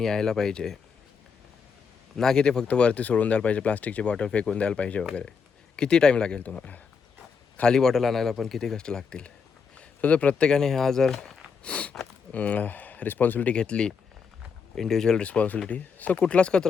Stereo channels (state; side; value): quieter; right; 5.9 dB